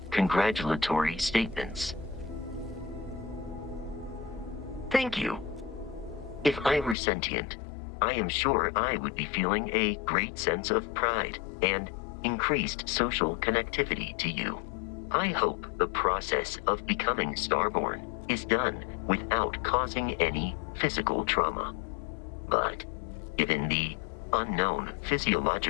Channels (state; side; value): drops out; right; at 7.0 s